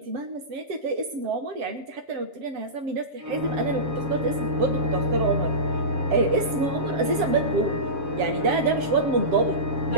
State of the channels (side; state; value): left; late; 7.3 ms